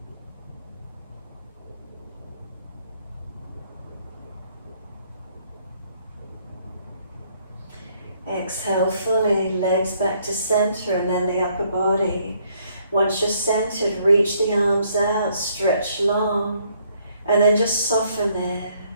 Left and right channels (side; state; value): both; inverted; correlation -0.68